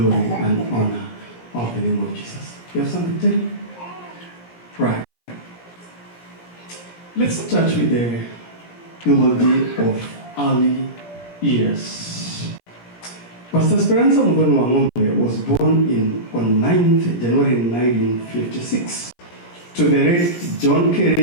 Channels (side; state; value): right; late; 17 ms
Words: and honor of the name of Jesus. You have something to tell me? Right. Let's start with the eulogy of early years. Pastor Speranza Wang'Ombe was born on 9th January 1956 to the late John